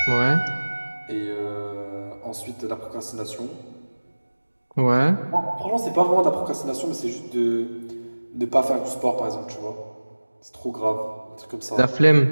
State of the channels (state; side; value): inverted; both; correlation -1.00